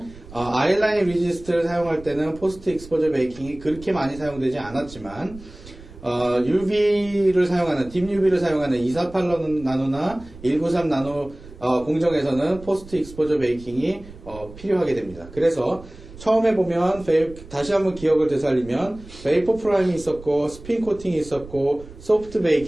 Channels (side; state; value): right; noise; rumble, 18 dB below the sound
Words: 아이라인 리지스트를 사용할 때는 포스트 익스포저 베이킹이 그렇게 많이 사용되지 않았지만 UV를 사용하는, 딥 UV를 사용하는 248나노나 193나노 공정에서는 포스트 익스포저 베이킹이 필요하게 됩니다. 그래서 처음에 보면 다시 한번 기억을 되살리면 베이퍼 프라임이 있었고, 스핀 코팅이 있었고, 소프트